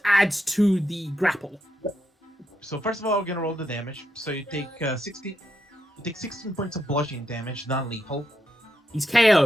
adds to the grapple. So first of all, we're gonna roll the damage. So you take 16. You take 16 points of bludgeoning damage, non-lethal. He's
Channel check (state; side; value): normal; both; correlation 0.82